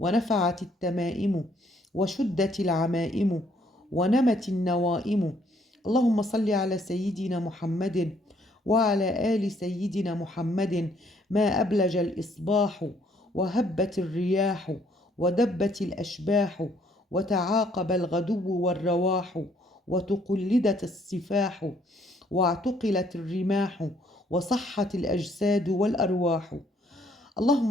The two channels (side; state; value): both; normal; correlation 0.66